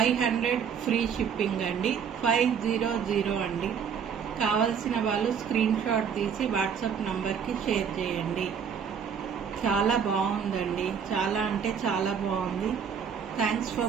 ఫ్రీ షిప్పింగ్ అండి. 500 అండి. కావలసిన వాళ్ళు స్క్రీన్ షాట్ తీసి వాట్సాప్ నంబర్కి షేర్ చేయండి. చాలా బాగుందండి. చాలా అంటే చాలా బాగుంది. Thanks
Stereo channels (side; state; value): left; quieter; 7.2 dB